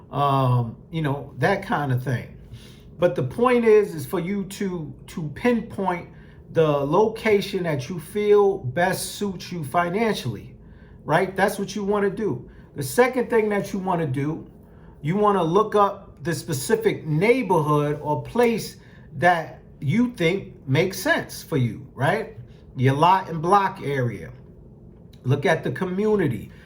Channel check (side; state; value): both; identical; correlation 1.00